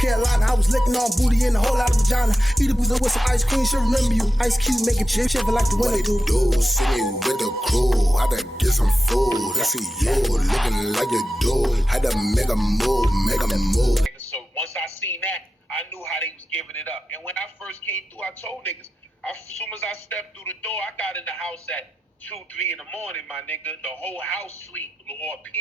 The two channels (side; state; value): both; normal; correlation 0.91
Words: Carolina. I was licking on booty and a whole lot of vagina. Eat a boozer with some ice cream. She'll remember you. Ice Cube making chip shiver like the winter do. See me with the crew. I done get some food. I see you looking like you do. Had to make a move, So once I seen that, I knew how they was giving it up. And when I first came through, I told niggas, as soon as I stepped through the door, I got in the house at 2, 3 in the morning, my nigga. The whole house sleep, or